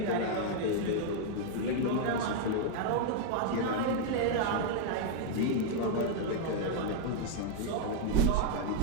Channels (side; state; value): both; different; correlation 0.00